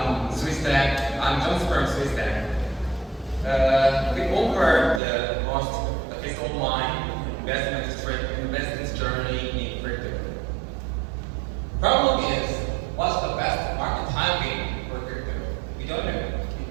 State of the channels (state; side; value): drops out; left; at 5.0 s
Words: Suistack. I'm John from Suistack. We offer the most efficient online investment journey in crypto. Problem is, what's the best market timing for crypto? We don't know.